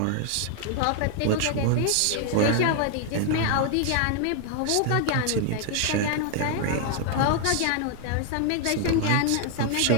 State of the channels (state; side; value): different; both; correlation 0.00